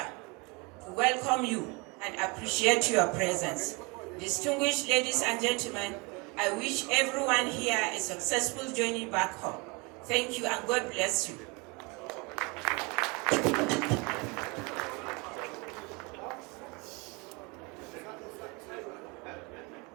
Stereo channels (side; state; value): left; quieter; 28.6 dB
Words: to welcome you and appreciate your presence. Distinguished ladies and gentlemen, I wish everyone here a successful journey back home. Thank you and God bless you.